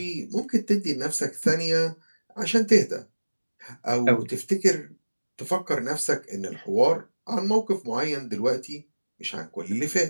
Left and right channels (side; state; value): both; inverted; correlation -1.00